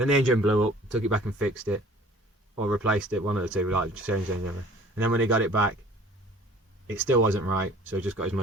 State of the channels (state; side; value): normal; both; correlation 0.50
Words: the engine blew up, took it back and fixed it, or replaced it, one of the two, like changed the engine. And then when he got it back, it still wasn't right, so he just got his